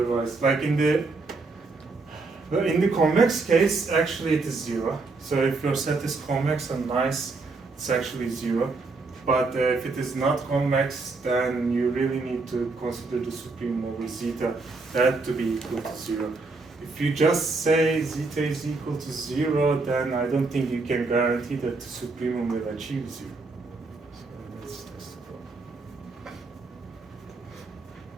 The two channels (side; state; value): left; quieter; 3.8 dB